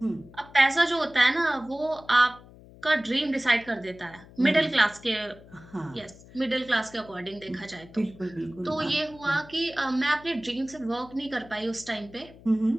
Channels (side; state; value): left; noise; hum, 21 dB below the sound